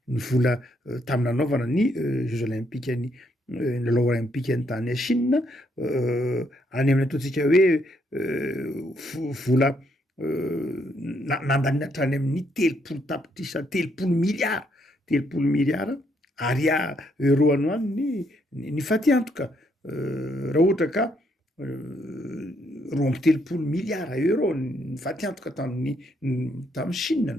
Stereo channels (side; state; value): both; normal; correlation 0.73